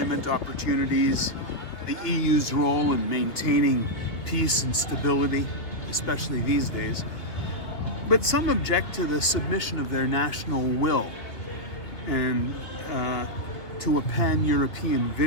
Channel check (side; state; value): right; late; 2.3 ms